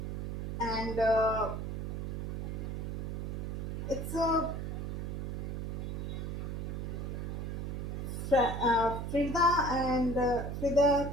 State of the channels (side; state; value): right; noise; hum, 3 dB below the sound